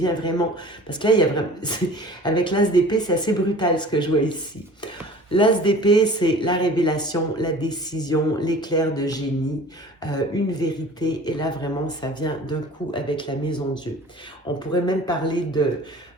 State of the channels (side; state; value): both; normal; correlation 0.45